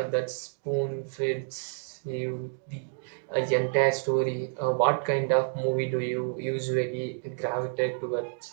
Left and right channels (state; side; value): silent; left; digital silence